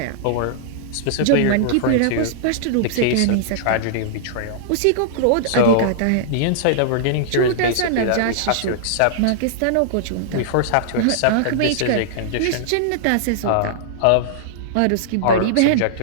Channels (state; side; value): different; both; correlation -0.01